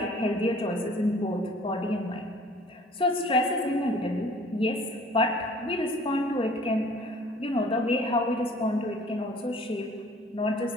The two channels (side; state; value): both; normal; correlation 0.51